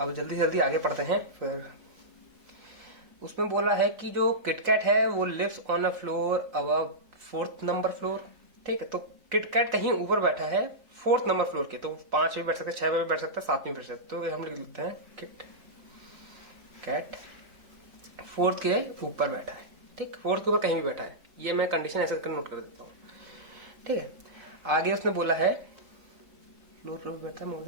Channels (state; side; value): late; left; 3.5 ms